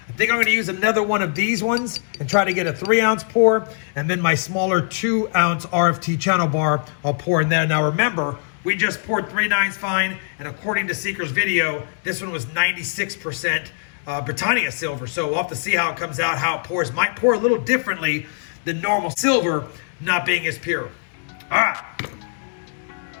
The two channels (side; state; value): right; silent; digital silence